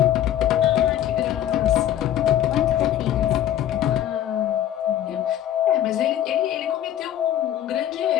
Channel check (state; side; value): quieter; right; 11.5 dB